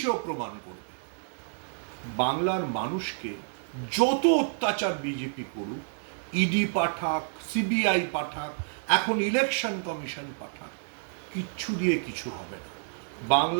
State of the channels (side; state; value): left; silent; digital silence